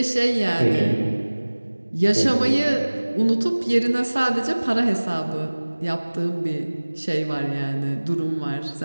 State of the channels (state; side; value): inverted; both; correlation -1.00